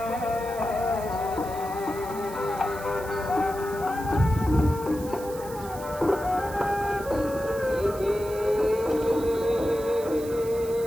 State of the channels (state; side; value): noise; right; hiss, 16 dB below the sound